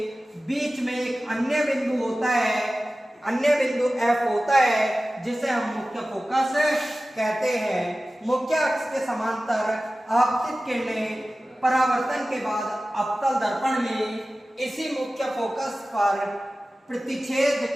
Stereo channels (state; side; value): normal; both; correlation 0.96